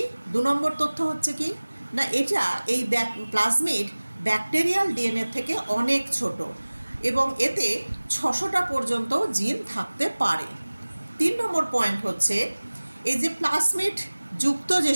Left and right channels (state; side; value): inverted; both; correlation -1.00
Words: 2 নম্বর তথ্য হচ্ছে কি না, এটা এই প্লাজমিড ব্যাকটেরিয়াল ডিএনএ থেকে অনেক ছোট এবং এতে 600টা পর্যন্ত জিন থাকতে পারে। 3 নম্বর পয়েন্ট হচ্ছে এই যে প্লাজমিড যুক্ত যে